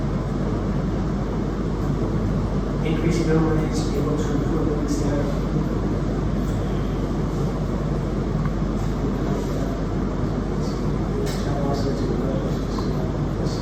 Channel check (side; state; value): both; identical; correlation 1.00